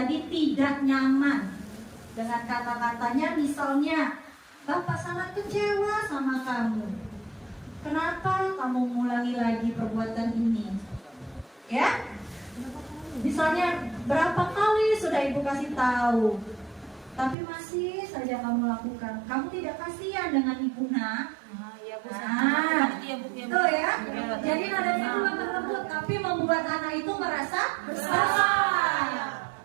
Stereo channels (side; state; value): left; drops out; at 17.4 s